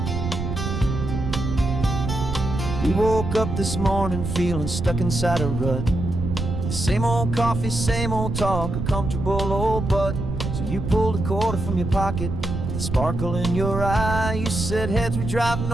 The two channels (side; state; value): right; noise; rumble, 4 dB below the sound